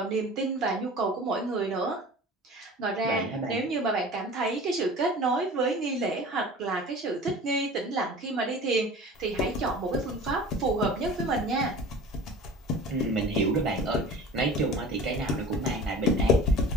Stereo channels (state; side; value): normal; both; correlation 0.40